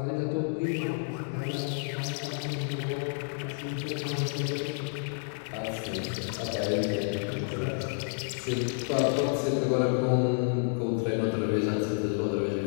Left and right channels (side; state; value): right; silent; digital silence